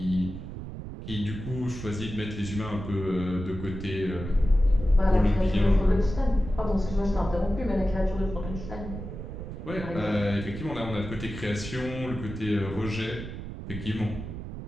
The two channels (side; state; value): right; noise; rumble, 9 dB below the sound